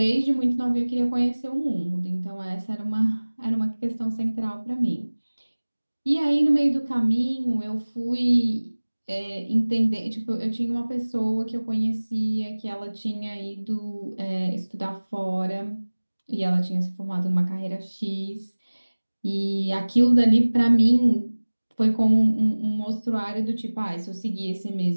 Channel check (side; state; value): both; inverted; correlation -1.00